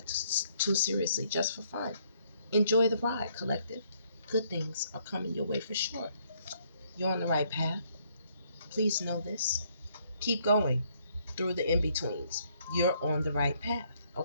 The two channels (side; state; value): both; inverted; correlation -0.69